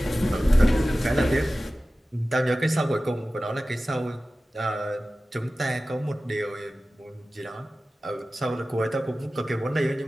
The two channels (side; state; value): both; normal; correlation 0.96